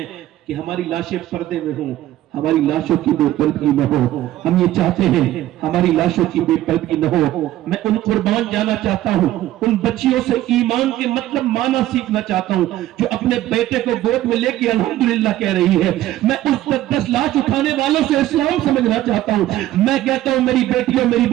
کہ ہماری لاشیں پردے میں ہوں، ہماری لاشوں کی بے پردگی نہ ہو۔ ہم یہ چاہتے ہیں ہماری لاشوں کی بے پردگی نہ ہو۔ میں ان قربان جانا چاہتا ہوں، ان بچیوں سے ایمان کے مطلب معنی سیکھنا چاہتا ہوں جو اپنے بیٹے کو گود میں لے کے الحمدللہ کہہ رہی ہے۔ میں اس 10 لاش اٹھانے والوں سے اسلام سمجھنا چاہتا ہوں۔ میں کہتا ہوں میری بیٹیوں میری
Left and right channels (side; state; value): left; quieter; 14.2 dB